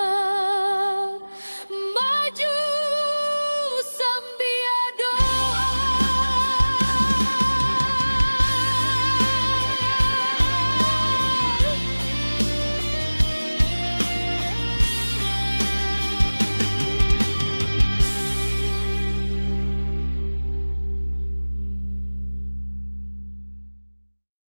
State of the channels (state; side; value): inverted; both; correlation -1.00